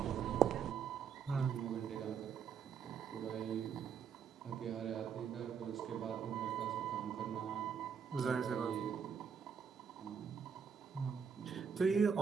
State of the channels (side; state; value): left; quieter; 7.0 dB